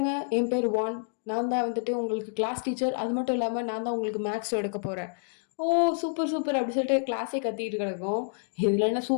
என் பேர் வான். நான் தான் வந்துட்டு உங்களுக்கு கிளாஸ் டீச்சர். அது மட்டும் இல்லாம நான் தான் உங்களுக்கு மேக்ஸ் எடுக்க போறேன். ஓ சூப்பர் சூப்பர் அப்படி சொல்லிட்டு கிளாஸே கத்திட்டு கிடக்கும். இதுல என்ன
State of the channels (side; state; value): right; silent; digital silence